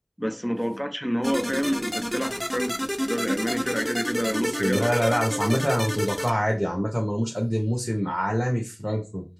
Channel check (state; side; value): identical; both; correlation 1.00